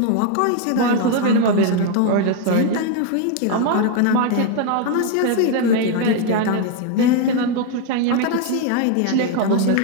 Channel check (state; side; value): different; both; correlation 0.00